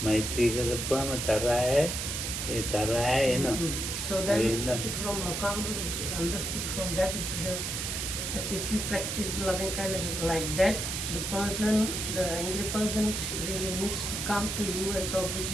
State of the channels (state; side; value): noise; right; hiss, 3 dB below the sound